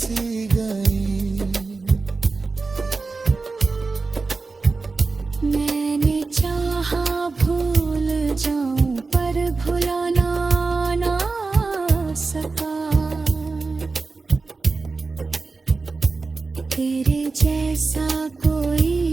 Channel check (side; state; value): left; quieter; 4.0 dB